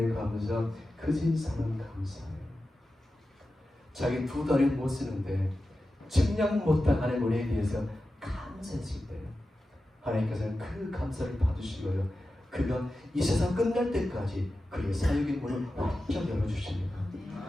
감사, 그진 사는 감사해요. 자기 두 다리 못 쓰는데 측량 못할 하나님의 은혜에 대해서 감사했을 때 하나님께서는 그 감사를 받으시고요, 그가 이 세상 끝날 때까지 그의 사역의 문을 활짝 열어주십니다.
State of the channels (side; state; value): both; normal; correlation 0.93